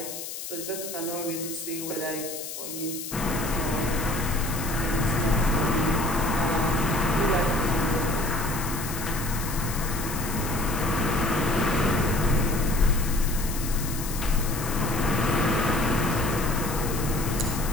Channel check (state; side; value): noise; left; hiss, 8 dB below the sound